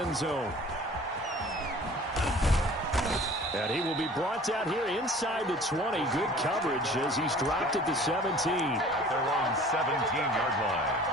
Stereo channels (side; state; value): both; normal; correlation 0.47